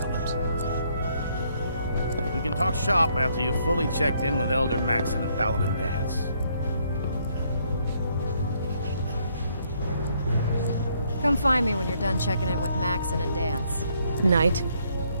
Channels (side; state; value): both; inverted; correlation -0.70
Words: We can talk shop after you've fully checked in with Elder Maxon and Paladin Dance. Come find me when you're done checking in with Maxon and Dance. Night.